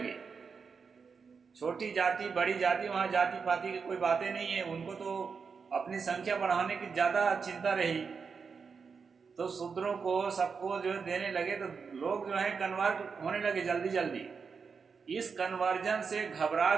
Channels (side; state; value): left; quieter; 5.5 dB